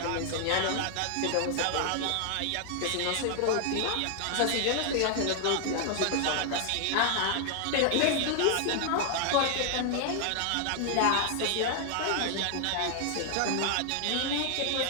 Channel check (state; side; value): different; both; correlation 0.00